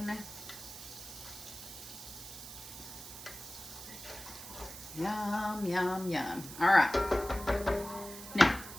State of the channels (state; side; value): noise; right; hiss, 12 dB below the sound